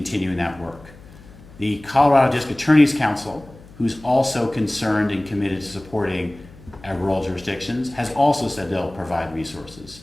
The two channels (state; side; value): noise; left; hum, 21 dB below the sound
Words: that work. The Colorado District Attorney's Council, who's also concerned and committed to supporting our rural jurisdictions, has also said they'll provide resources.